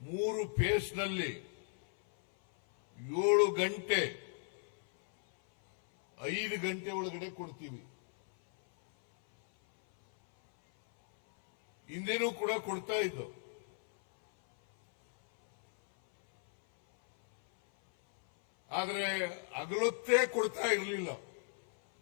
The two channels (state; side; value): silent; right; 54 dB below the other